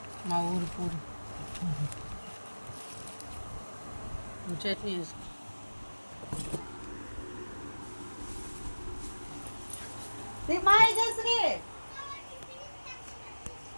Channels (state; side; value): inverted; both; correlation -1.00